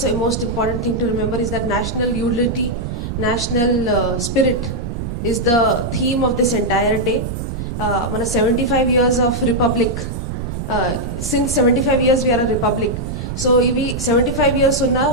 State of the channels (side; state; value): right; noise; rumble, 5 dB below the sound